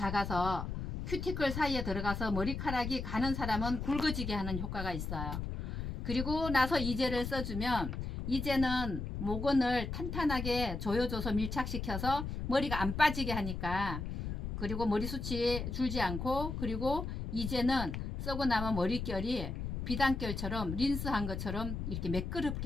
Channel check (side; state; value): left; noise; rumble, 4 dB below the sound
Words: 큐티클 사이에 들어가서 머리카락이 가는 사람은 굵어지게 하는 효과가 있어요. 그리고 나서 이제를 써주면 이제는 모근을 탄탄하게 조여줘서 밀착시켜서 머리가 안 빠지게 하니까, 그리고 머리숱이 줄지 않고, 그리고 이제는 쓰고 나면 머릿결이 비단결처럼 린스한 것처럼 이렇게